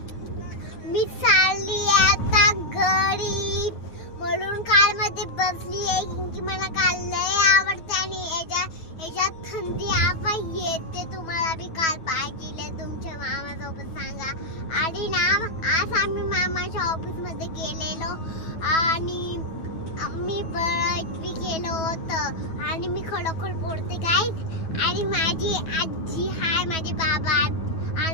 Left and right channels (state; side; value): late; right; 9.2 ms